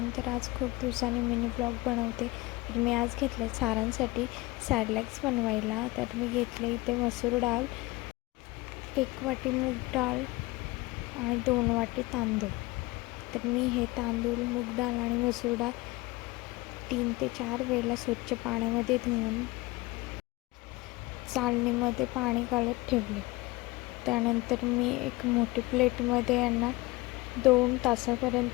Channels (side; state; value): right; quieter; 21.5 dB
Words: तर आज खूप दिवसांनी मिनी ब्लॉग बनवते. तर मी आज घेतले सारांसाठी सॅडलॅक्स बनवायला. तर मी घेतले इथे मसूर डाळ, 1 वाटी मूग डाळ आणि 2 वाटी तांदूळ. तर मी हे तांदूळ, मूग डाळ आणि मसूर डाळ 3 ते 4 वेळेला स्वच्छ पाण्यामध्ये धुवून चाळणीमध्ये पाणी काढत ठेवले. त्यानंतर मी एक मोठी प्लेटमध्ये यांना 2